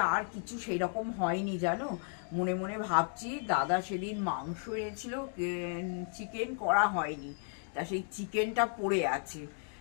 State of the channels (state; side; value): silent; right; 55 dB below the other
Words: আর কিছু সেই রকম হয়নি জানো। মনে মনে ভাবছি, দাদা সেদিন মাংস এনেছিল, চিকেন করা হয়নি, তা সেই চিকেনটা পড়ে আছে।